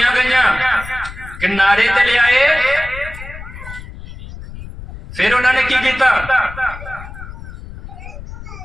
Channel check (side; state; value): left; noise; rumble, 13 dB below the sound